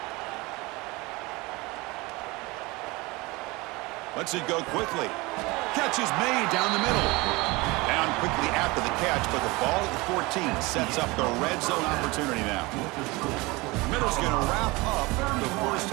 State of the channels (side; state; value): left; quieter; 23.5 dB